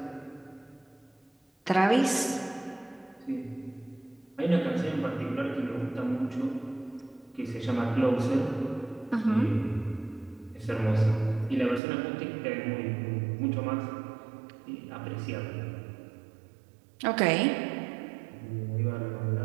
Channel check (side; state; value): left; drops out; at 11.8 s